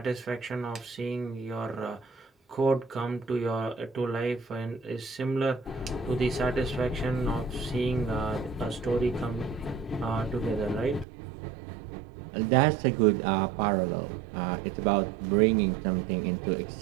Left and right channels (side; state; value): left; drops out; at 11.1 s